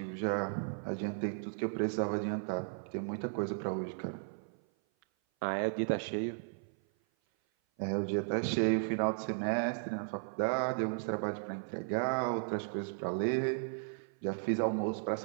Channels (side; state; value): left; silent; 54 dB below the other